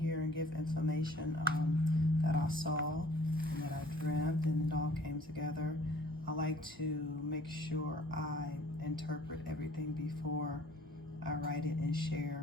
and give information that I saw and that I dreamt, and it all came together. I like to make sure I interpret everything before I write it and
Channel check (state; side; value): normal; both; correlation 0.54